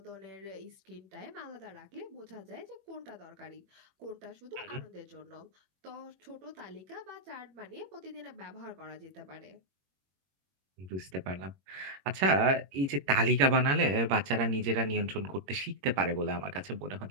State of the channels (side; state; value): left; late; 21 ms